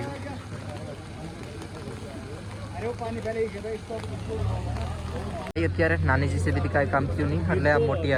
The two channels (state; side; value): identical; both; correlation 1.00